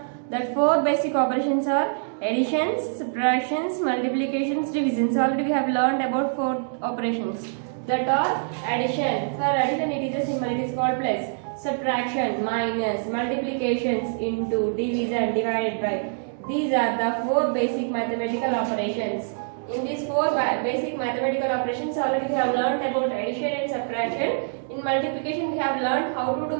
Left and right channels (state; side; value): silent; left; digital silence